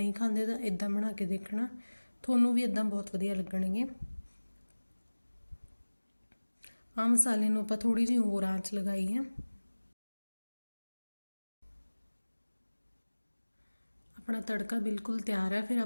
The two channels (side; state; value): both; inverted; correlation -1.00